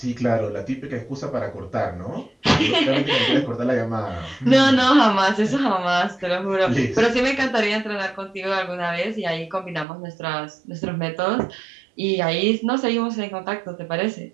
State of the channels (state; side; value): drops out; left; at 9.9 s